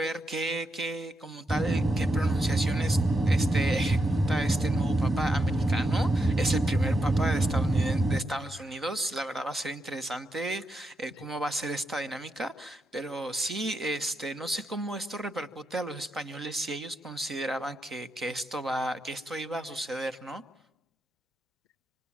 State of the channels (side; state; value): both; normal; correlation 0.84